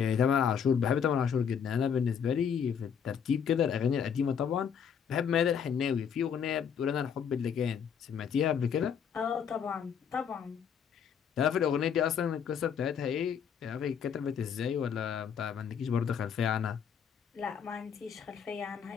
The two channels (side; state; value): right; quieter; 7.5 dB